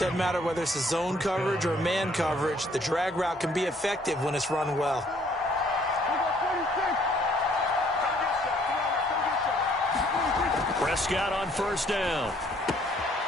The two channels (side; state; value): both; normal; correlation 0.62